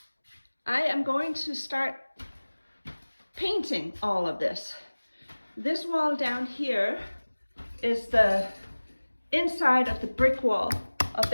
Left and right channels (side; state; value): both; inverted; correlation -1.00